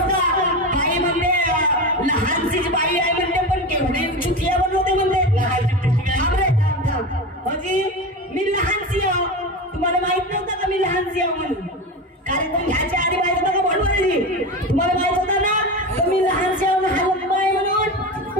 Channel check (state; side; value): normal; both; correlation 0.23